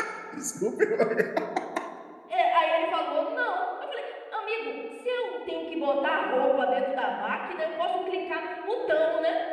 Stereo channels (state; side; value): identical; both; correlation 1.00